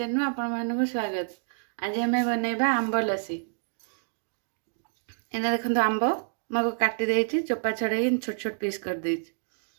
में आपण मानक स्वागत। आज आम बनैबा आंब लस्सी। एना देखो आंब मको काटी देछि, चोपा छड़े छोट छोट पीस कर देछि।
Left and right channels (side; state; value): left; silent; digital silence